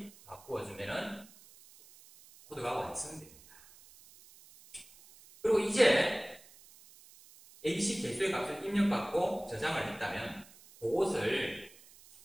바꾸어 주면은 코드가 완성됩니다. 그리고 이제 ABC 개수의 값을 입력받고 저장을 했다면 그것을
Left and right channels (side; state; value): right; noise; hiss, 23 dB below the sound